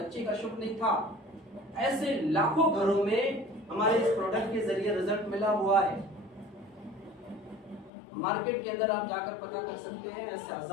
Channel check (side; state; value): right; drops out; at 7.9 s